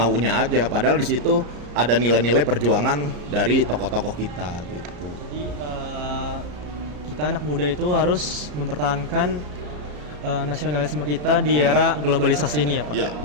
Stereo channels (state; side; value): late; left; 34 ms